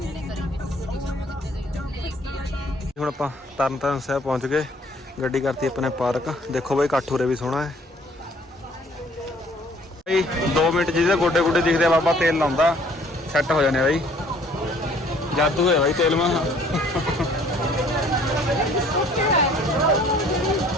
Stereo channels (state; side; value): normal; both; correlation 0.58